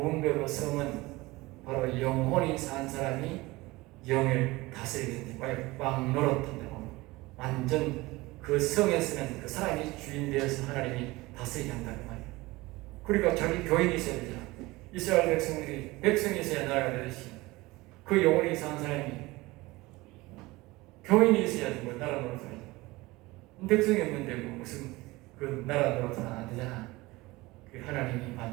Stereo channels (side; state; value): left; quieter; 21.0 dB